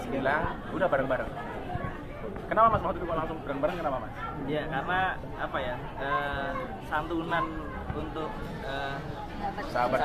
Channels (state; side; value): identical; both; correlation 1.00